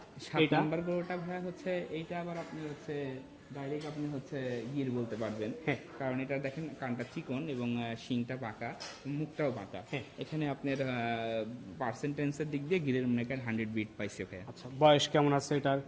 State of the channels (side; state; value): both; identical; correlation 1.00